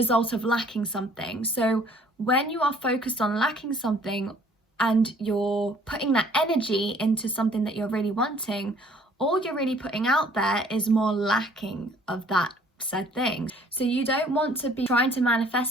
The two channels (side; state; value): both; normal; correlation 0.57